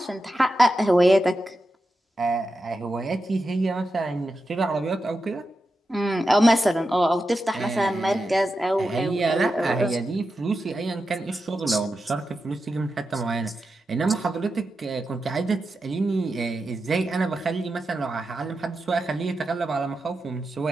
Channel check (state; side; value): normal; both; correlation 0.89